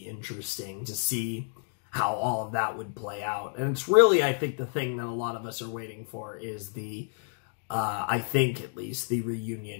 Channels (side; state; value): right; silent; digital silence